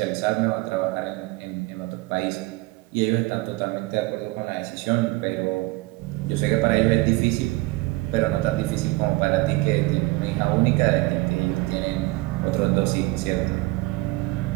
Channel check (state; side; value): quieter; left; 21.7 dB